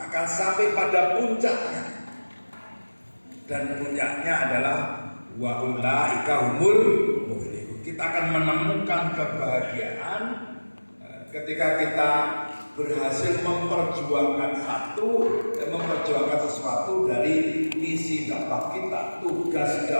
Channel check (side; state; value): both; inverted; correlation -1.00